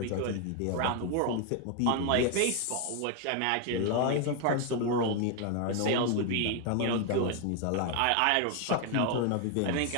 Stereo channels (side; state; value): both; different; correlation 0.01